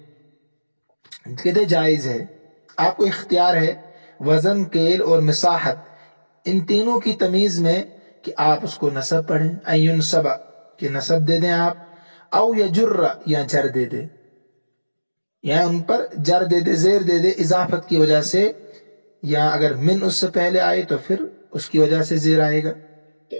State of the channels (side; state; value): both; inverted; correlation -1.00